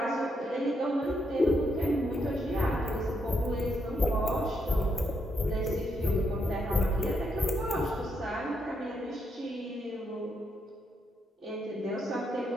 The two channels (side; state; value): both; normal; correlation 0.78